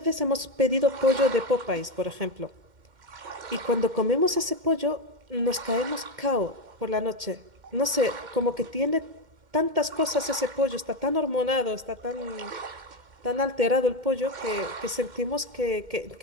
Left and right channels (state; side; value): late; left; 2.1 ms